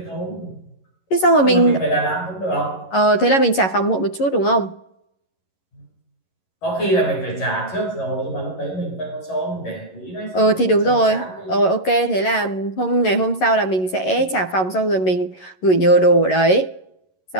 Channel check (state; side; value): late; right; 11 ms